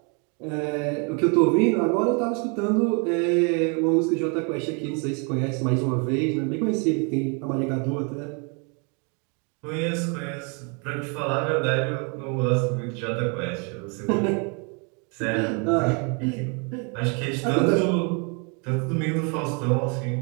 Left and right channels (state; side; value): quieter; left; 35.4 dB